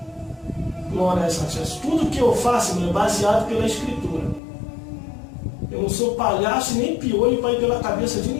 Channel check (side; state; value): right; drops out; at 4.4 s